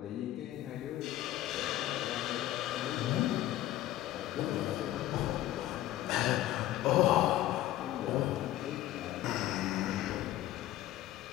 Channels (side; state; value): right; quieter; 14.3 dB